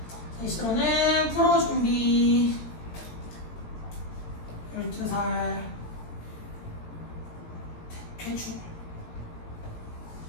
제시로는 프로 준비 12살 대충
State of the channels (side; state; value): right; late; 17 ms